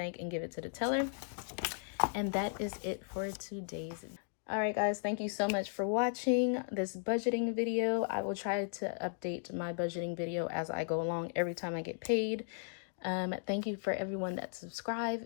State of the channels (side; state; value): right; silent; digital silence